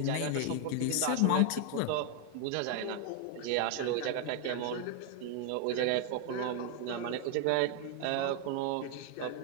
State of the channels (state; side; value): different; both; correlation 0.00